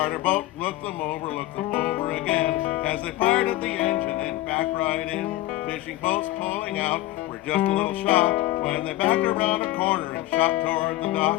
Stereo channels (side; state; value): right; quieter; 16.4 dB